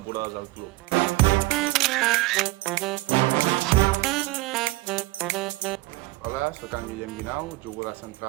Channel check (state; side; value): quieter; left; 20.6 dB